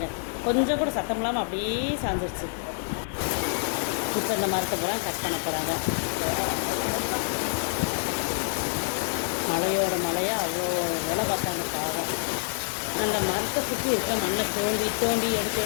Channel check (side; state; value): right; silent; digital silence